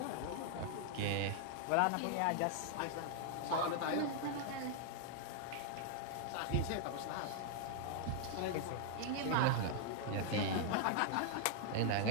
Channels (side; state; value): both; different; correlation -0.01